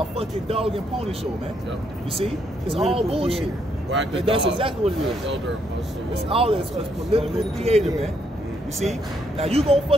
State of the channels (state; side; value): normal; both; correlation 0.74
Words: fucking dog and pony show, man. Yep. You see? It's all bullshit. That's exactly what it is. It's all it's political theater, man. You see? Now you gonna